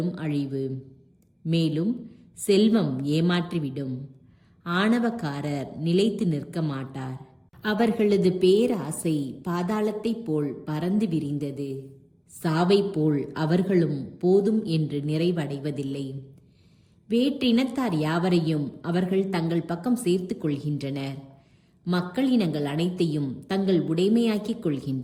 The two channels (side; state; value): both; identical; correlation 1.00